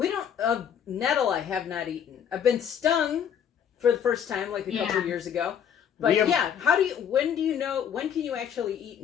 don't... nettle I have not eaten. I've been stung for the first time like a couple of years ago. But when can you actually eat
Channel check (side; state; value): right; quieter; 8.4 dB